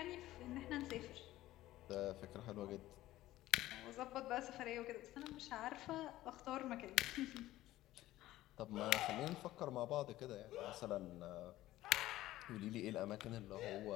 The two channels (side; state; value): right; quieter; 15.6 dB